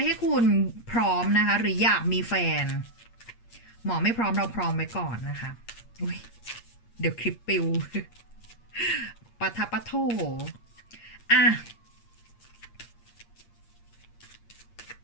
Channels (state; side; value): late; right; 8.6 ms